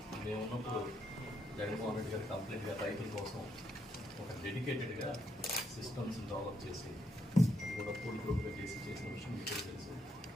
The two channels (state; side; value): normal; both; correlation 0.77